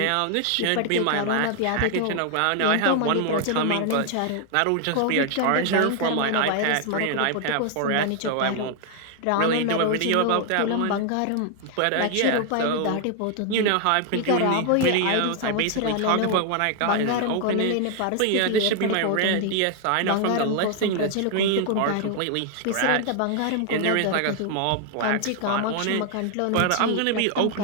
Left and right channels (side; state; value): both; different; correlation 0.00